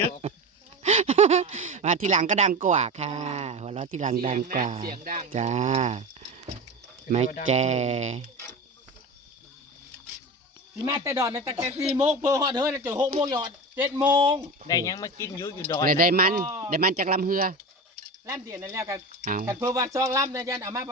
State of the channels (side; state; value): both; normal; correlation 0.27